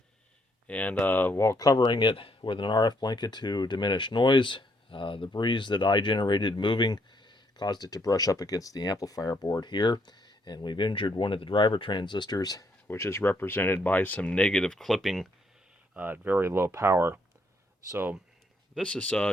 And while covering it with an RF blanket to diminish noise, the breeze that I generated moving caused it to brush up against the amplifier board here. And we've injured one of the driver transistors, which is represented by some negative clipping at very low power. So this is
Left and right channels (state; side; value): normal; both; correlation 0.72